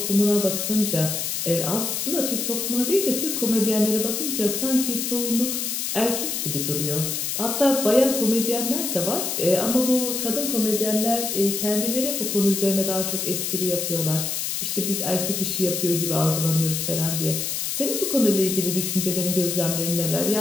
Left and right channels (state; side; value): noise; left; hiss, 2 dB below the sound